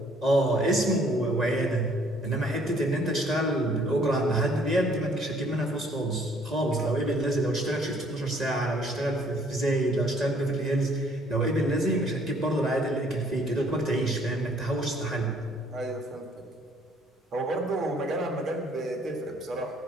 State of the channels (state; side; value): normal; both; correlation 0.61